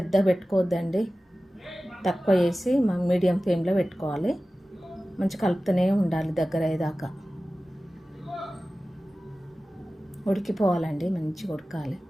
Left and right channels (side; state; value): both; normal; correlation 0.96